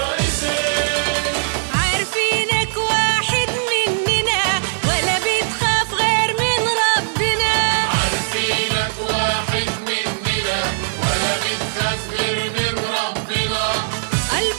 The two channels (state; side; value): silent; left; digital silence